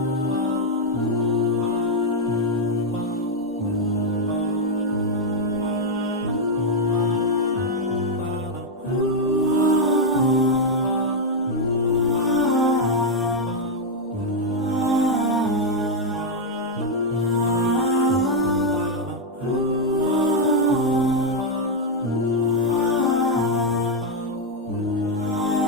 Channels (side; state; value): both; normal; correlation 0.01